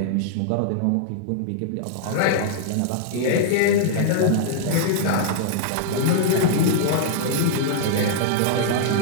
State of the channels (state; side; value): different; both; correlation -0.01